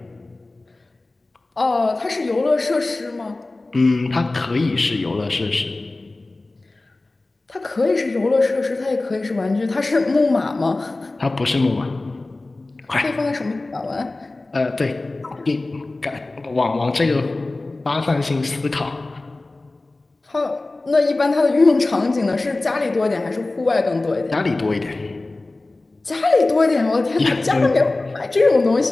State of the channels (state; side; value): quieter; right; 3.1 dB